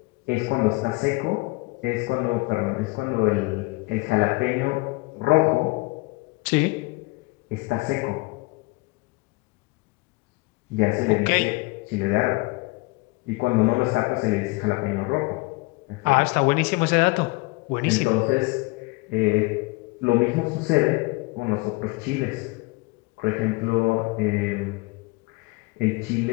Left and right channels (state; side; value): quieter; right; 25.2 dB